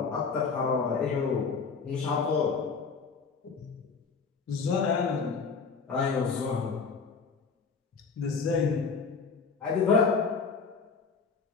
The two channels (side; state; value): right; quieter; 5.2 dB